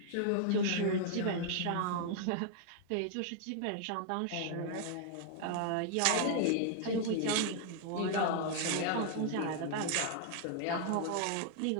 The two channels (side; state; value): both; different; correlation 0.00